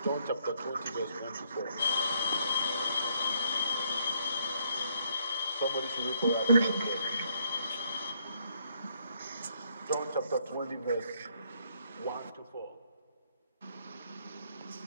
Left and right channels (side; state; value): both; inverted; correlation -0.70